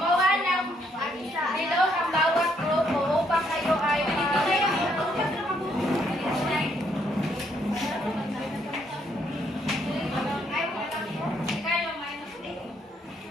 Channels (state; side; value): normal; both; correlation 0.72